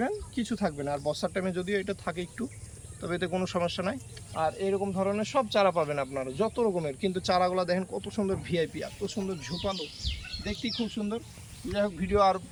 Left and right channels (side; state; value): both; identical; correlation 1.00